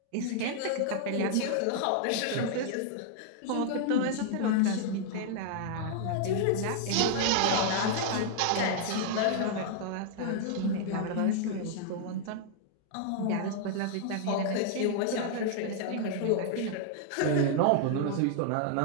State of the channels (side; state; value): both; different; correlation -0.01